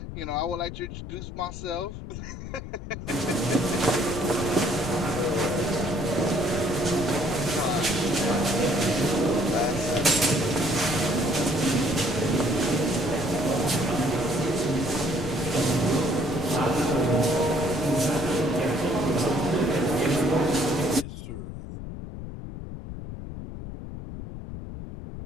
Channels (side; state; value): left; noise; rumble, 9 dB below the sound